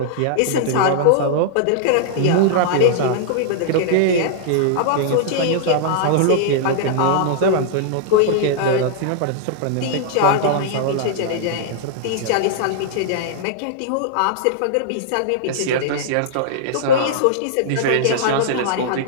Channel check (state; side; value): different; both; correlation -0.01